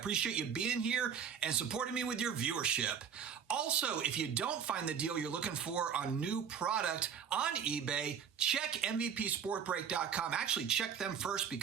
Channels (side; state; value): left; quieter; 7.5 dB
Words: you being here and supporting me with your viewership. Also, if you don't find the deal you're looking for on new product on eBay, check MVPSportBreak.com. Actually, check them first